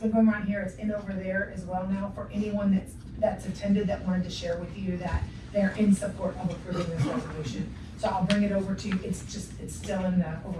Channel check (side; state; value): both; identical; correlation 1.00